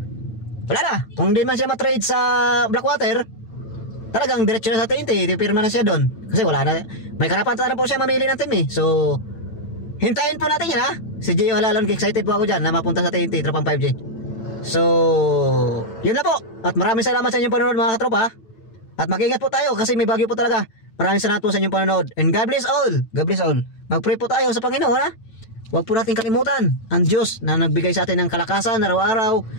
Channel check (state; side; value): late; right; 9.0 ms